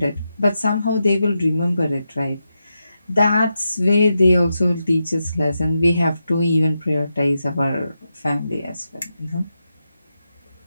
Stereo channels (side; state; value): both; inverted; correlation -0.88